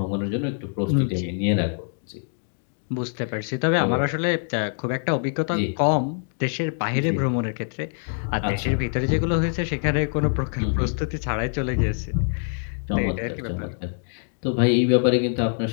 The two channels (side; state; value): right; silent; 61 dB below the other